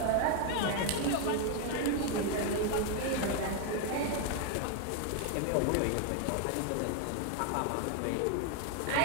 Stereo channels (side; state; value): both; different; correlation 0.01